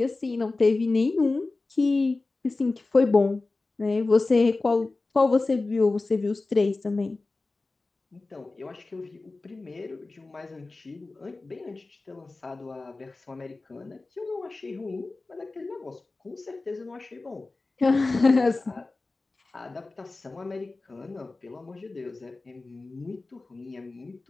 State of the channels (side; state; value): right; quieter; 3.4 dB